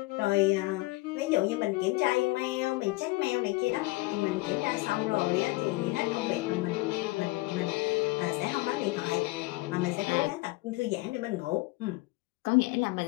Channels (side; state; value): right; quieter; 21.9 dB